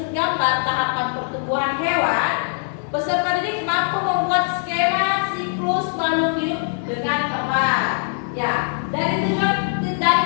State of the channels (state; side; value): silent; right; 58 dB below the other